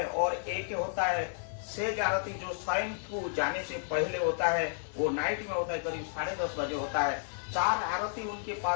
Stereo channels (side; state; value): right; silent; digital silence